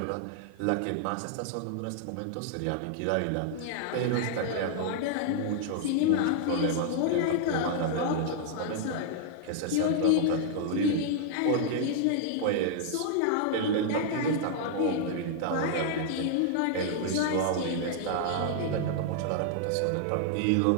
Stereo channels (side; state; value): both; different; correlation -0.01